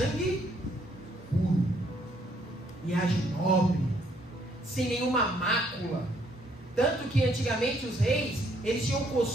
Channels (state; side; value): normal; both; correlation 0.68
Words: puro, linhagem nobre, sem nenhuma mácula. Tanto que antigamente os reis, eles tinham o